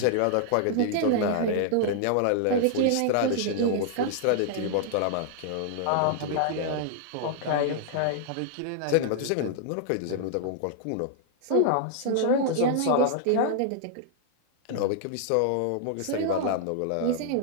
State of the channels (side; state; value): both; different; correlation -0.01